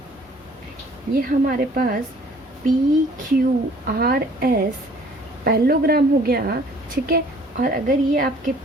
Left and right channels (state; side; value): normal; both; correlation 0.55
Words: ये हमारे पास PQRS पैरेललोग्राम हो गया, ठीक है। और अगर ये आपके